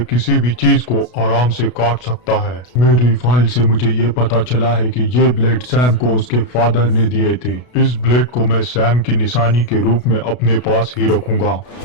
किसी भी चीज को आराम से काट सकता है। मेरी फाइल से मुझे ये पता चला है कि ये ब्लेड सैम को उसके फादर ने दिए थे। इस ब्लेड को मैं सैम की निशानी के रूप में अपने पास ही रखूंगा।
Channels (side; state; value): right; late; 33 ms